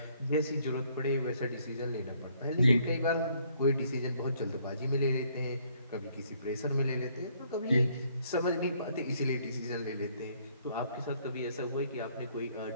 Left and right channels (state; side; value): inverted; both; correlation -0.66